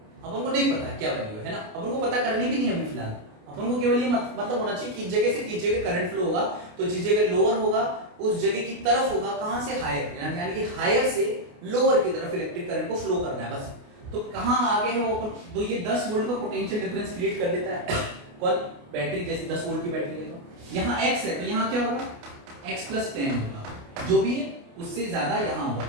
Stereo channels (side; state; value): left; late; 28 ms